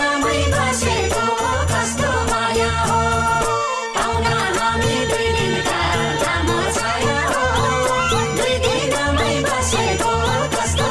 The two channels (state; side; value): identical; both; correlation 1.00